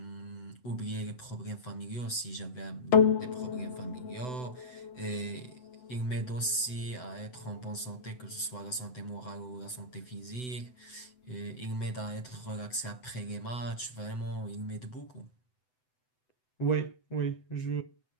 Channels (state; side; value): late; right; 8.0 ms